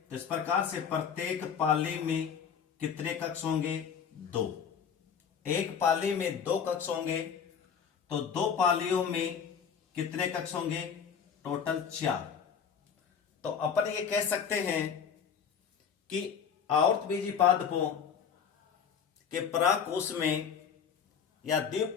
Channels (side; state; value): right; quieter; 7.2 dB